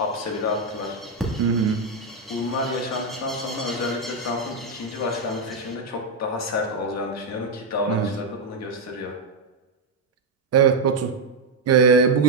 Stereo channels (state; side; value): quieter; left; 3.1 dB